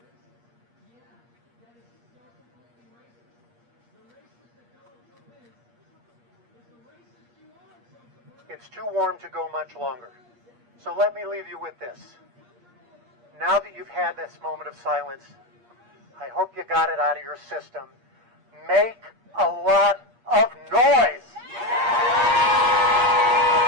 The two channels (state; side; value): late; left; 8.5 ms